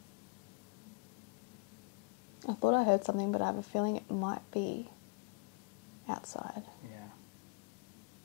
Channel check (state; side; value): quieter; right; 32.1 dB